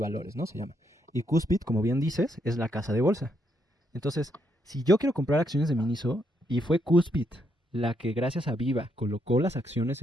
¿no? Se llama. Y Cuspit, como bien dices, es la casa de bolsa. Entonces, si yo quiero comprar acciones de Miniso y fue Cuspit la que gracias a Viva colocó las acciones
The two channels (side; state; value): both; normal; correlation 0.76